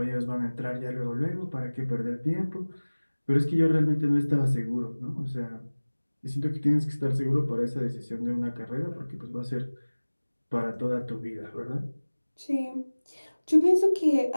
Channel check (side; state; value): both; inverted; correlation -1.00